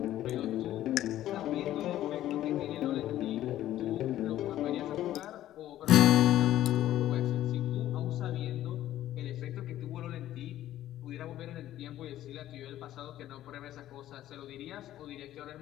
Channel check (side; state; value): right; quieter; 13.2 dB